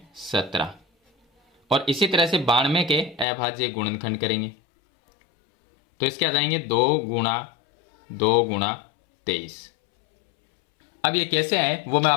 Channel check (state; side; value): drops out; right; at 3.2 s